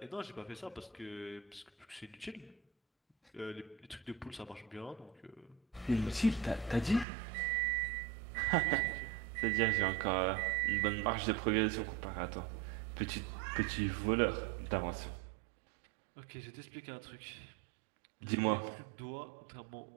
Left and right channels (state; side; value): drops out; left; at 7.1 s